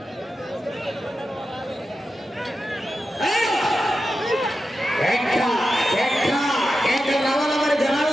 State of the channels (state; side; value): normal; both; correlation 0.91